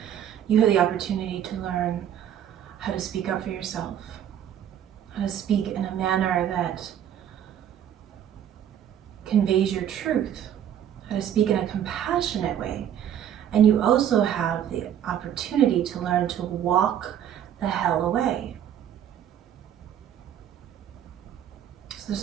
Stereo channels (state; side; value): quieter; left; 10.0 dB